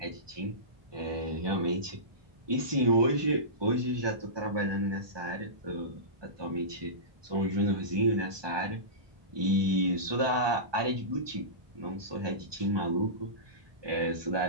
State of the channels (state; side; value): late; left; 1.2 ms